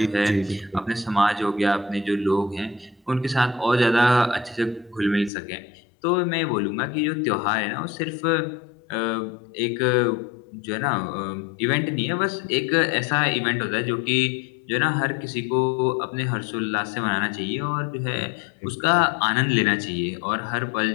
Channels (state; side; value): drops out; right; at 5.3 s